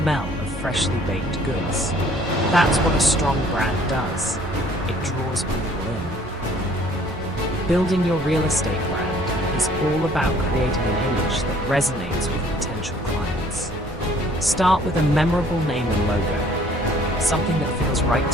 of freshly baked goods. That's what a strong brand does. It draws people in. Building your real estate brand is all about creating an image that resonates with potential clients. Start with a memorable name and logo, something that feels right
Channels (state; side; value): normal; both; correlation 0.57